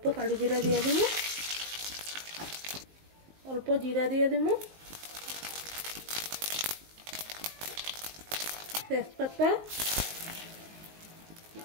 কালি জিরা দিয়ে দিব, অল্প জিরা দিয়ে দিব, তেজপাতা,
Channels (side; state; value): left; late; 19 ms